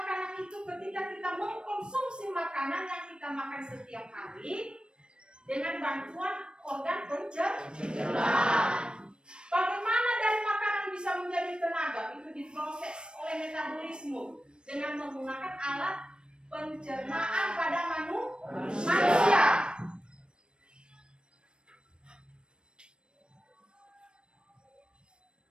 itu, ketika kita mengkonsumsi makanan yang kita makan setiap hari dengan bantuan organ pencernaan. Bagaimana dari makanan bisa menjadi tenaga? Itu diproses oleh metabolisme dengan menggunakan alat pencernaan pada manusia.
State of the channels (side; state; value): left; late; 0.053 ms